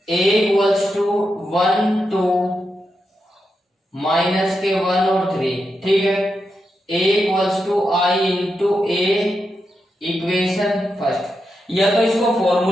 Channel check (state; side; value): normal; both; correlation 0.86